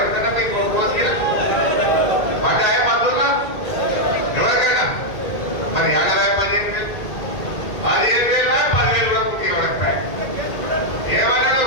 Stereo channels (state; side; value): late; right; 1.8 ms